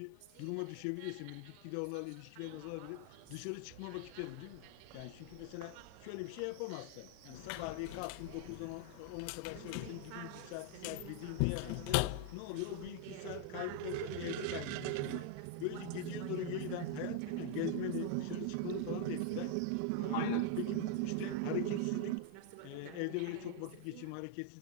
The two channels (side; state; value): both; different; correlation 0.00